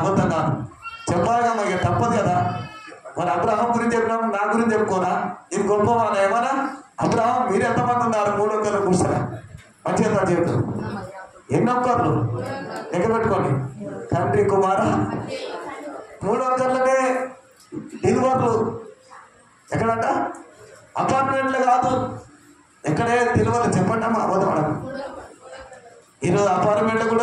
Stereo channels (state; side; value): identical; both; correlation 1.00